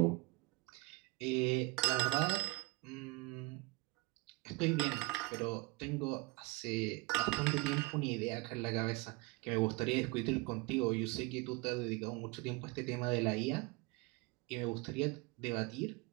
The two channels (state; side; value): quieter; left; 23.3 dB